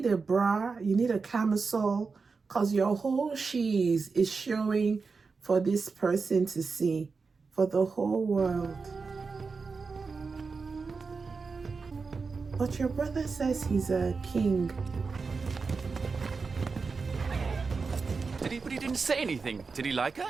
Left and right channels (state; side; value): quieter; left; 4.7 dB